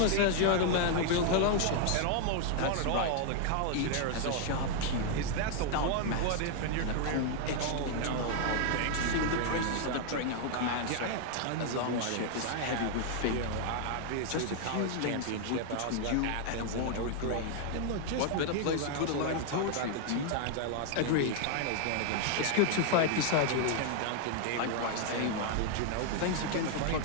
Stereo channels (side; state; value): both; different; correlation 0.00